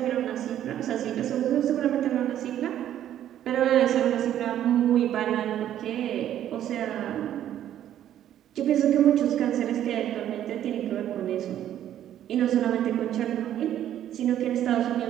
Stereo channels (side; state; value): left; quieter; 11.2 dB